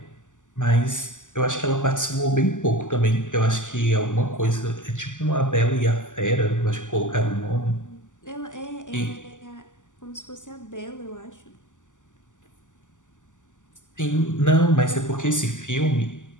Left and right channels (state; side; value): late; right; 0.87 ms